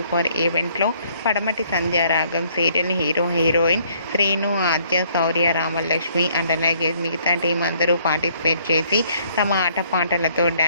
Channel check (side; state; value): both; inverted; correlation -0.64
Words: ఈవెంట్లో Padamati Sandhyaragam serial hero heroine Srinu, Aadya, Shaurya, Ramalakshmi and అలాగే మిగతా టీం అందరూ పార్టిసిపేట్ చేసి తమ ఆటపాటలతో